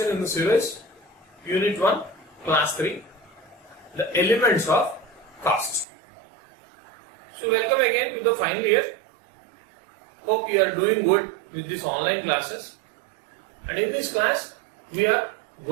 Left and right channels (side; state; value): left; drops out; at 5.9 s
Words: in the series, Unit 1, Class 3, the elements of cost. So welcome again to the final year. Hope you are doing good with these online classes. And in this class, we are